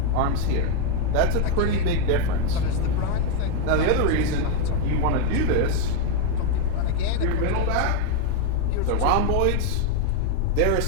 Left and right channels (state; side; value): different; both; correlation 0.01